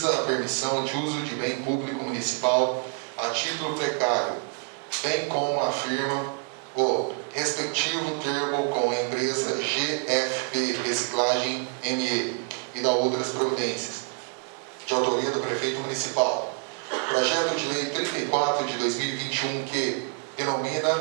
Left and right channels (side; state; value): left; quieter; 39.4 dB